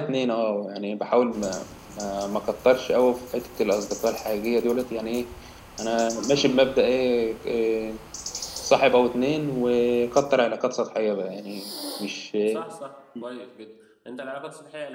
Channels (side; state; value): both; identical; correlation 1.00